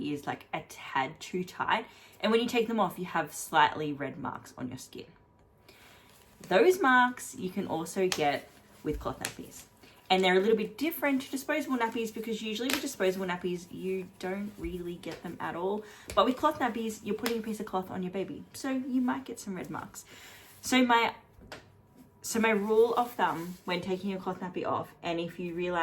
like a tad too tight, and when you take them off, you have slightly red marks on your skin. Those marks you can also get with cloth nappies. And they're a little bit different to disposable nappies, because usually with disposable nappies, you don't really get them at all. But with cloth nappies, you're putting a piece of cloth on your baby, so you might get some red marks. So my rule of thumb when taking a cloth nappy off, and if you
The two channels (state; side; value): identical; both; correlation 1.00